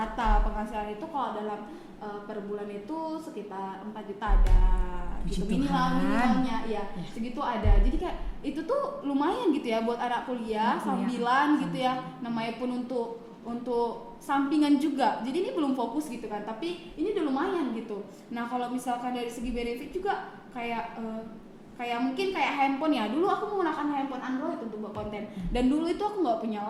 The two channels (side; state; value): both; identical; correlation 1.00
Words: penghasilan itu kalau dalam per bulan itu sekitar 4 juta ada gitu, minimalnya ya segitu ada. Jadi kayak itu tuh lumayan gitu ya buat anak kuliah sambilan gitu ya, namanya pun untuk sampingan juga. Jadi ini belum fokus gitu kan, tapi ini udah lumayan gitu. Nah kalau misalkan dari segi benefit juga kayak mungkin kayak handphone ya. Dulu aku menggunakan handphone Android untuk buat konten, dan dulu itu aku nggak punya